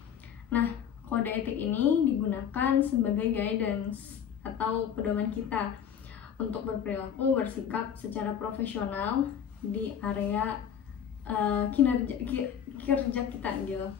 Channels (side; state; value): right; quieter; 8.6 dB